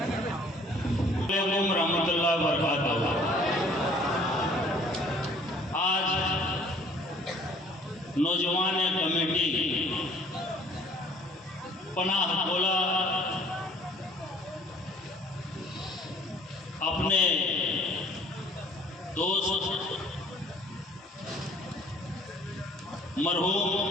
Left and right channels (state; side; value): normal; both; correlation 0.55